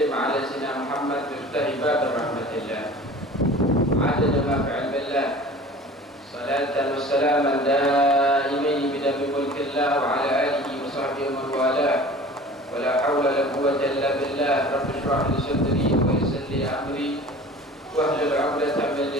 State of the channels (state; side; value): normal; both; correlation 0.42